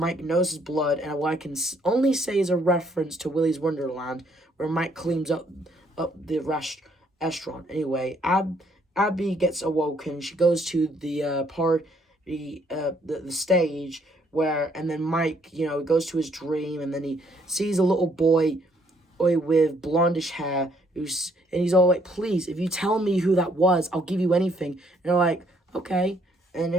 knows his blood, and what I can only say is a reference to Willy's Wonderland, where Mike cleans up the restaurant. Anyway, Abby gets awoken. She goes to the party, the stage, and then Mike, goes to his dream, and then he sees a little boy with blondish hair, and he's all like, please, if you tell me who that was, I'll give you anything. And they're like, okay. And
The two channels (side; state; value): both; normal; correlation 0.67